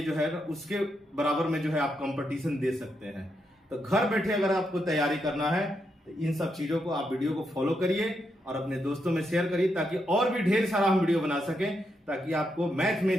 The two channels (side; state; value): both; normal; correlation 0.81